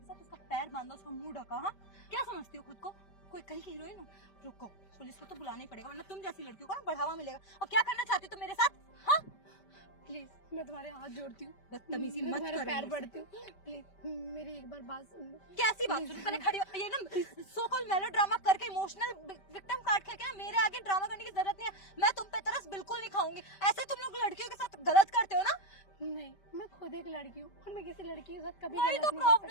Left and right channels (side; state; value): right; late; 5.1 ms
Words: साथ? उसका पैर बांधा, उसका मुंह ढका। हाँ, क्या समझती हो खुद को? कोई कहीं की हीरोइन हो? रुको, पुलिस को तो बुलाना ही पड़ेगा, वरना तुम जैसी लड़कियों को ना बढ़ावा मिलेगा। और क्या करना चाहती हो तुम मेरे साथ? हाँ, प्लीज, मैं तुम्हारे हाथ जोड़ती हूँ, बदतमीजी मैं मत तुम्हारे करो पैर मुझसे। पड़ती हूँ, प्लीज मेरी एक बार बात सुन लो। कैसी बात सुनो? पहले खड़ी हो। ये ना सो कॉल मेलोड्रामा करके इमोशनल विक्टिम कार्ड खेल के ना मेरे आगे ड्रामा करने की जरूरत नहीं है। मैं तुम पे तरस बिल्कुल नहीं खाऊंगी। ऐसे तुम लोग लड़कियों के साथ गलत करते हो ना। नहीं, मैं खुद एक लड़की हूँ और मैं किसी लड़की के साथ कभी वही गलत तो नहीं कर